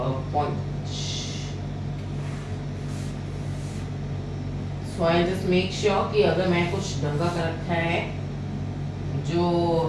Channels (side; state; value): both; identical; correlation 1.00